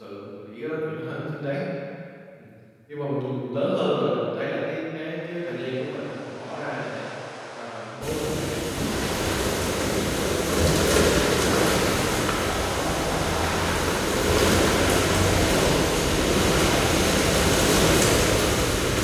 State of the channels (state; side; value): identical; both; correlation 1.00